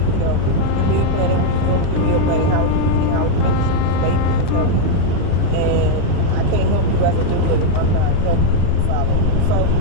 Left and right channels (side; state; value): both; different; correlation 0.00